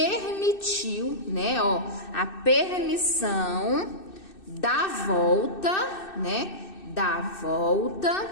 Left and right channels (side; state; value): right; late; 2.6 ms